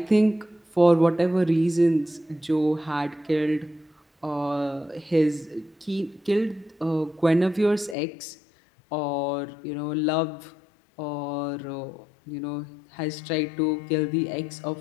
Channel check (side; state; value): right; drops out; at 8.0 s